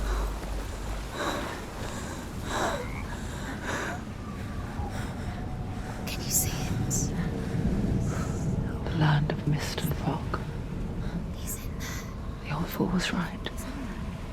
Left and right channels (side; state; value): both; identical; correlation 1.00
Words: Can you see it? The land of mist and fog. He's in there. The old fool was right.